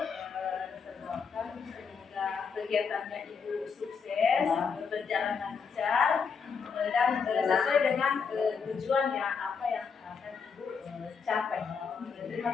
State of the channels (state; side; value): quieter; right; 5.8 dB